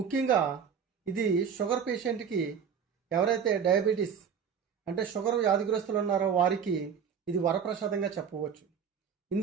ఇది షుగర్ పేషెంట్కి, ఎవరైతే డయాబెటీస్ అంటే షుగర్ వ్యాధిగ్రస్తులు ఉన్నారో వారికి ఇది వరప్రసాదంగా చెప్పవచ్చు.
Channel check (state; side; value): quieter; left; 7.1 dB